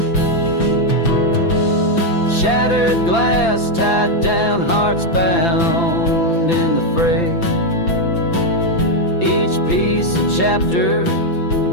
Shattered glass tied down, hearts bound in the fray, each piece a chapter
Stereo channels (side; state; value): right; late; 5.9 ms